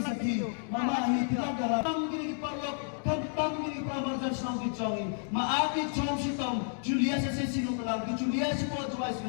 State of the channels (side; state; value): right; silent; 57 dB below the other